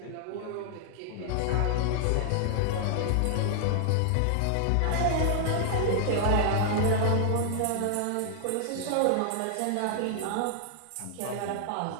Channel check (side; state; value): both; different; correlation -0.01